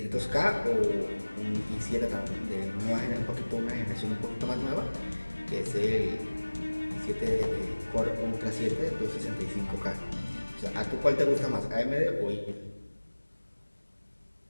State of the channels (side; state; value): both; inverted; correlation -1.00